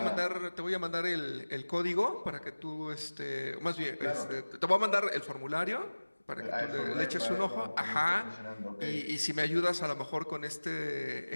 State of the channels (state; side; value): inverted; both; correlation -1.00